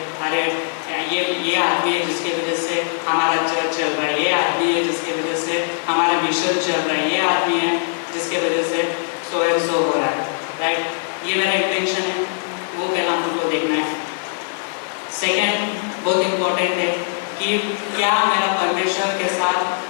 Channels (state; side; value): silent; right; digital silence